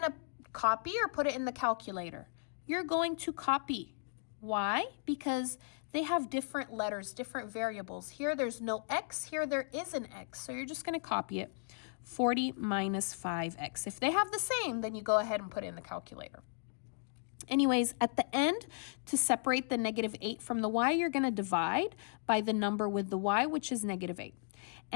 to copy or put it in the calculator? You're going to copy. Why? Because they have different letters, different variables. Here, there's no x. Here, there is an x. So you're just going to copy it. 40 minus 5x. If they have the same, then you go ahead and put it in the calculator. Anyways, at the end, to separate the negative 8 from the y, you're going to divide by the number with the y, which is negative 8.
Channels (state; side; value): silent; right; digital silence